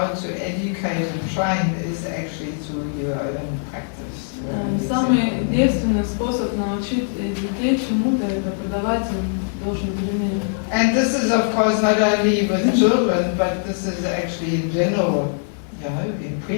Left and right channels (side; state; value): right; silent; digital silence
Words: to educate and train is actually through your own practice. Самый действенный способ научить детей чему-то — это подавать им должный пример. And this is, of course, not only with children, but this is actually in general, in